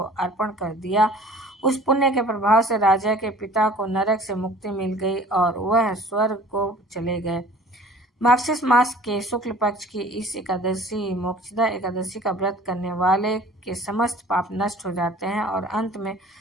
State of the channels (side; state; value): both; normal; correlation 0.48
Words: अर्पण कर दिया। उस पुण्य के प्रभाव से राजा के पिता को नरक से मुक्ति मिल गई और वह स्वर्ग को चले गए। मार्गशीर्ष मास के शुक्ल पक्ष की इस एकादशी मोक्षदा एकादशी का व्रत करने वाले के समस्त पाप नष्ट हो जाते हैं और अंत में